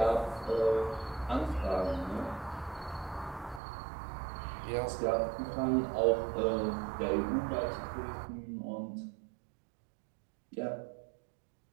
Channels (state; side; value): drops out; left; at 3.6 s